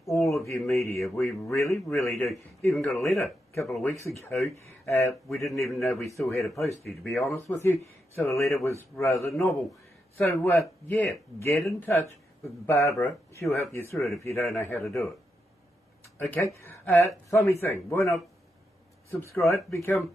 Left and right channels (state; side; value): normal; both; correlation 0.84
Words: all of your media. We really, really do. Even got a letter a couple of weeks ago. We didn't even know we still had a postie, to be honest with you. So the letter was rather novel. So, yeah, get in touch with Barbara. She'll help you through it if you don't know how to do it. Okay? Funny thing. Why not subscribe, become